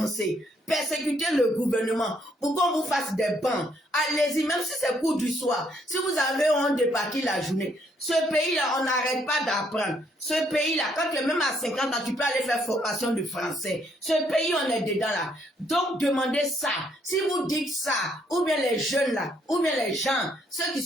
Persécutez le gouvernement pour qu'on vous fasse des bancs. Allez-y, même si c'est cours du soir. Si vous avez honte de partir la journée. Ce pays-là, on n'arrête pas d'apprendre. Ce pays-là, quand tu es même à 50 ans, tu peux aller faire formation de français. Ce pays, on est dedans là. Donc, demandez ça. Si vous dites ça, ou bien les jeunes là, ou bien les gens, ceux qui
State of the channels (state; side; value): normal; both; correlation 0.70